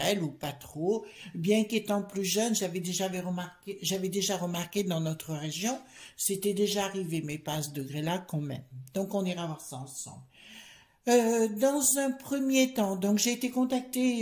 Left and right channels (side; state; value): both; identical; correlation 1.00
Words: ou pas trop. Bien qu'étant plus jeune, j'avais déjà remarqué dans notre région, c'était déjà arrivé, mais pas à ce degré-là quand même. Donc on ira voir ça ensemble. Dans un premier temps, donc j'ai été contactée,